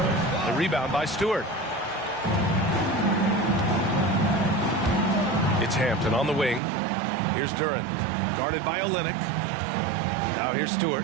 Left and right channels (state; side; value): drops out; left; at 6.6 s